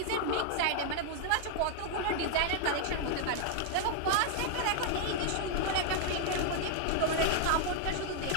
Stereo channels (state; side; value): different; both; correlation 0.00